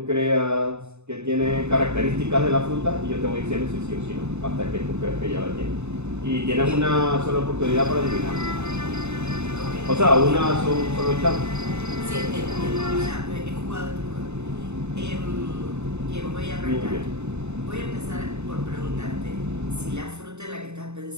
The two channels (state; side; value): late; left; 0.82 ms